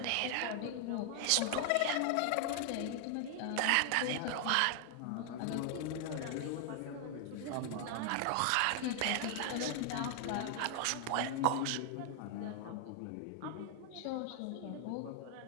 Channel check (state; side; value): different; both; correlation 0.00